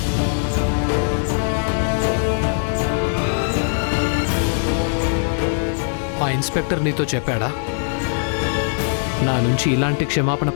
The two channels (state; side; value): silent; right; 60 dB below the other